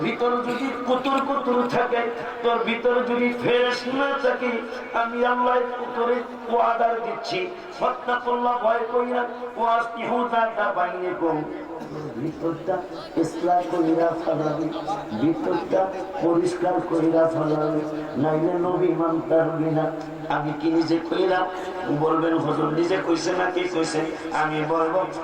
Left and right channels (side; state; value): both; identical; correlation 1.00